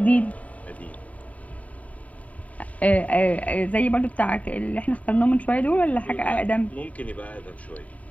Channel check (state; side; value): late; right; 0.069 ms